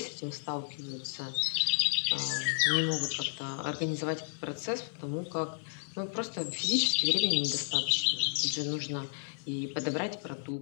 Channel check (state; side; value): silent; right; digital silence